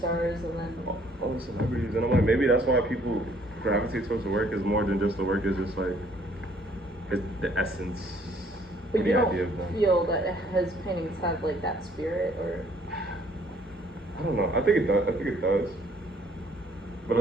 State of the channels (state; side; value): normal; both; correlation 0.62